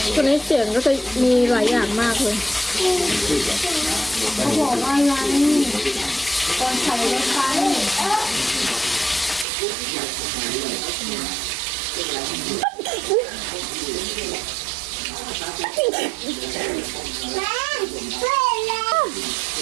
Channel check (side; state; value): left; drops out; at 9.5 s